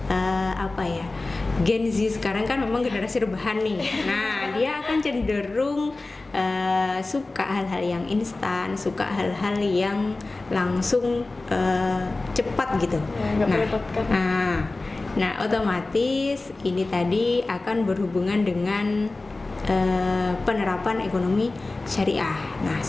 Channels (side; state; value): right; quieter; 3.2 dB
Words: Gen Z sekarang kan memang generasi rebahan nih. Nah, dia akan cenderung suka hal-hal yang instan, suka hal-hal yang langsung cepat gitu. Nah, otomatis ini tadi akan berhubungan dengan penerapan ekonomi syariah. Nah,